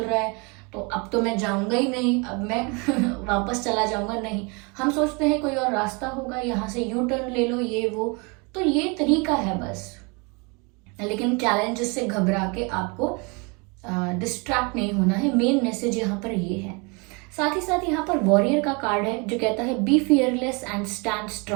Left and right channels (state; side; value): quieter; left; 30.6 dB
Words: रहा है, तो अब तो मैं जाऊंगा ही नहीं, अब मैं वापस चला जाऊंगा। नहीं, हम सोचते हैं कोई और रास्ता होगा, यहाँ से यू टर्न ले लो, ये वो, तो ये तरीका है बस। लेकिन चैलेंजेस से घबरा के आपको डिस्ट्रैक्ट नहीं होना है, मेन मैसेज यहाँ पर ये है। साथ ही साथ यहाँ पर वॉरियर का कार्ड है जो कहता है be fearless and stand